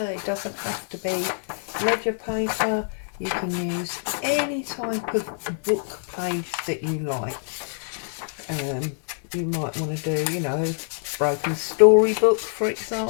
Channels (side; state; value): right; silent; digital silence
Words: It doesn't have to be ledger paper. You can use any type of book page that you like. You might want to do, you know, broken storybook, for